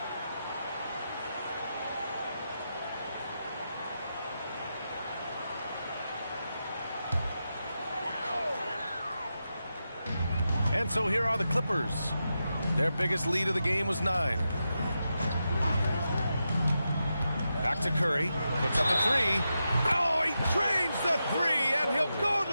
And so here are the Clippers. Their biggest lead of the game was 9. Back to Curry. Puts up a 3. Oh, he drains the 3, and he'll go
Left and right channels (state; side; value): inverted; both; correlation -0.88